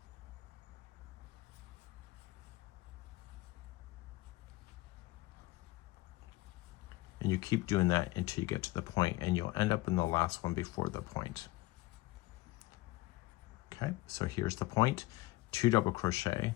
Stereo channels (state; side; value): quieter; right; 19.4 dB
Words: And you keep doing that until you get to the point, and you'll end up in the last one before the point. Okay, so here's the point, 2 double crochet,